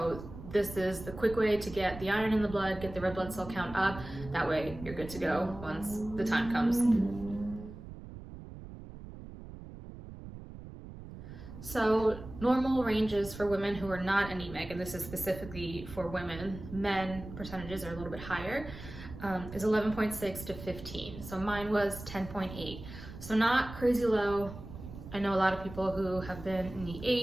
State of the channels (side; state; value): right; noise; rumble, 13 dB below the sound